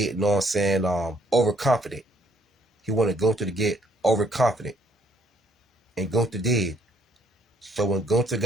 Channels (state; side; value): normal; both; correlation 0.66